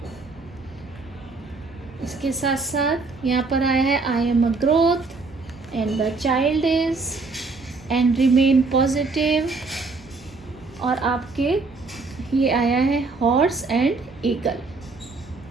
इसके साथ साथ यहाँ पर आया है आई am a growth and the child is and remain positive, और आपके ये आया है हॉर्स एंड ईगल।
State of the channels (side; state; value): left; quieter; 3.9 dB